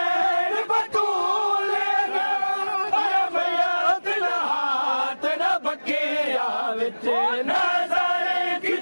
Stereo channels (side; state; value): both; inverted; correlation -1.00